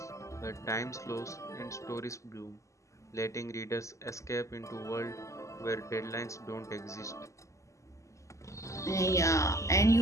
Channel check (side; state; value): right; late; 0.15 ms